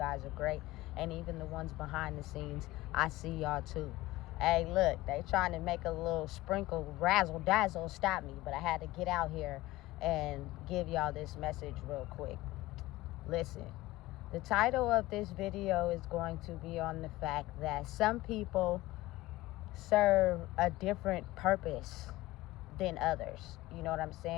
are great. And even the ones behind the scenes, I see y'all too. Hey, look, they trying to make a little sprinkle razzle dazzle stop me, but I had to get out here and give y'all this message real quick. Listen, the title of this video is going to be on the fact that some people serve a different purpose than others. You know what I'm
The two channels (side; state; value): right; quieter; 18.2 dB